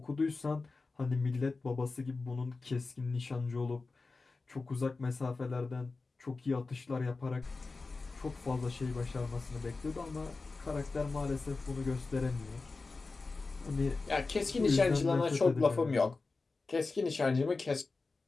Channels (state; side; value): quieter; right; 3.8 dB